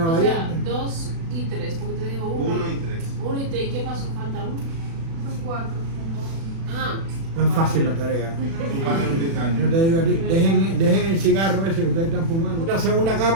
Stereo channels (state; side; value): late; left; 36 ms